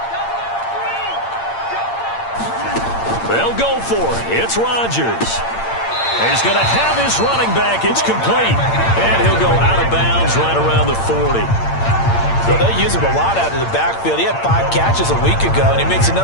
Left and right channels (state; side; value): late; right; 8.8 ms